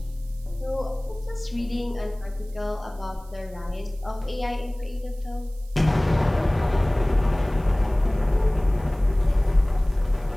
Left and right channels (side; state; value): right; noise; hiss, 27 dB below the sound